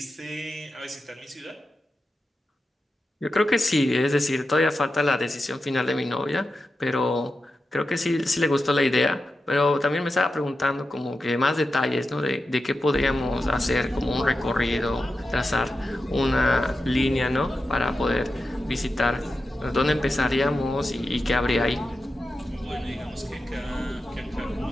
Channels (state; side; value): normal; both; correlation 0.91